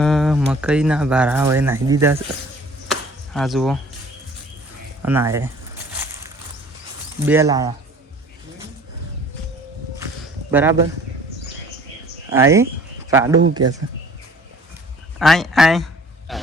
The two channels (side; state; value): both; normal; correlation 0.51